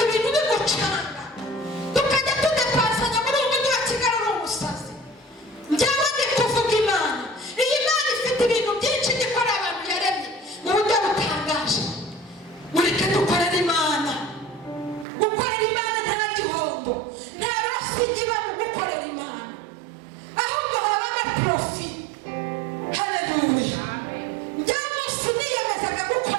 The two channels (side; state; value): left; drops out; at 15.1 s